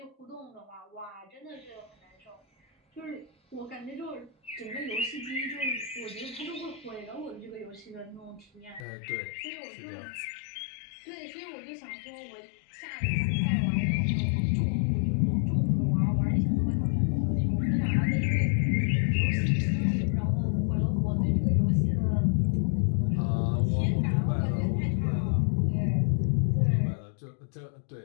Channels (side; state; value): right; drops out; at 8.8 s